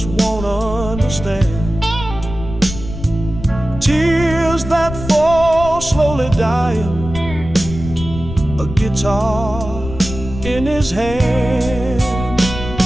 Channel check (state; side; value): noise; left; rumble, 9 dB below the sound